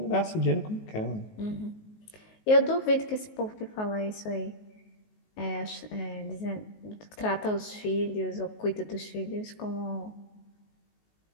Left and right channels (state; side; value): late; right; 19 ms